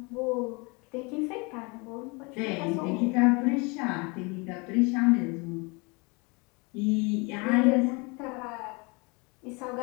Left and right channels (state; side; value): quieter; right; 29.3 dB